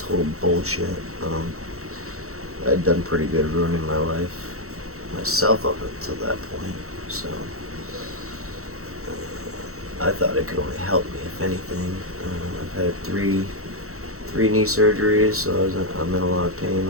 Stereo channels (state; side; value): late; left; 0.64 ms